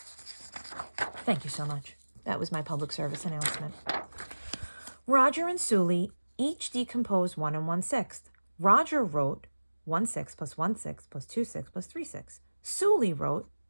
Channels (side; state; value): both; inverted; correlation -1.00